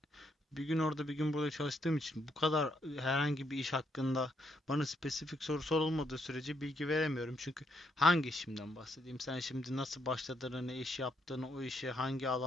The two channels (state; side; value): normal; both; correlation 0.75